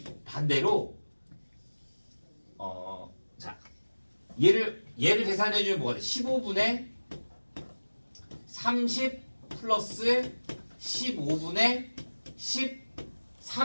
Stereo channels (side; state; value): both; inverted; correlation -1.00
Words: 반대로 자 얘를 계산해주면 뭐가 돼? 15분의 30 플러스 15분의